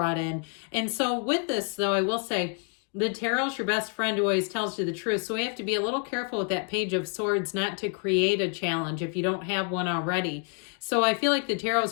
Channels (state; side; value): quieter; right; 39.8 dB